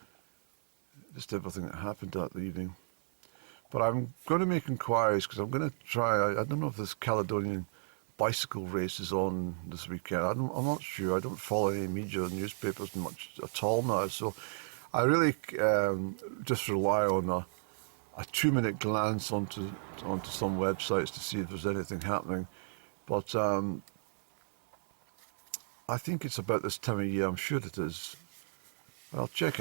just everything that happened that evening. But I'm going to make inquiries because I'm going to try. I don't know if this Caledonian bicycle race is on this weekend. I'm not sure. I don't follow any media or newspapers much at all now. So I really just rely on a 2-minute glance onto some websites to see if there's anything happening. But I think it's about this time of year. I'm sure it is. I'll check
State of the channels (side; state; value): left; silent; 55 dB below the other